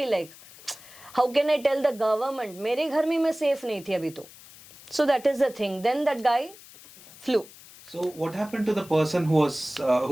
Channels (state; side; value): noise; left; hiss, 20 dB below the sound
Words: like how can I tell the government? मेरे घर में मैं safe नहीं थी अभी तो. So that is the thing. Then that guy flew. So what happened to the person who was